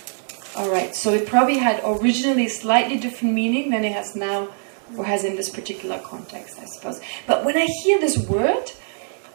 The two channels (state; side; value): silent; left; 64 dB below the other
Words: All right. So it probably had originally slightly different meaning than it has now, or has in this particular context, I suppose. But when I hear this word,